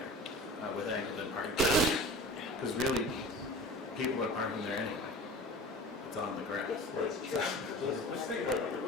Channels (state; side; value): normal; both; correlation 0.38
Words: with angled in parking. Because really, people are parking there anyway. It's on the grass. Let's think about it.